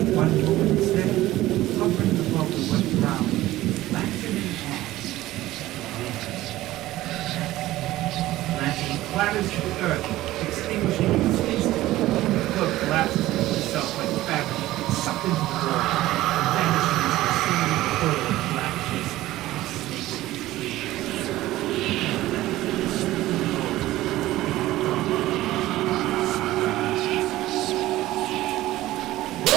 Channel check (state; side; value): quieter; left; 16.2 dB